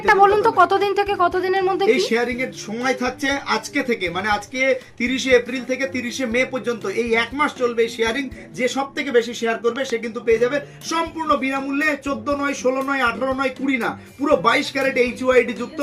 বলুন তো কতদিন থেকে কতদিনের মধ্যে? এই শেয়ারিং এর সময় থাকছে আজকে থেকে, মানে আজকে 30শে এপ্রিল থেকে 30শে মে পর্যন্ত, এই এক মাস চলবে এই শেয়ারিং। যে সবথেকে বেশি শেয়ার করবে সে কিন্তু পেয়ে যাবে সম্পূর্ণ বিনামূল্যে 14 নয় 16 নয় 18 নয় 20 না, পুরো 22 ক্যারেট এইচইউআইডি যুক্ত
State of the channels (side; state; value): both; identical; correlation 1.00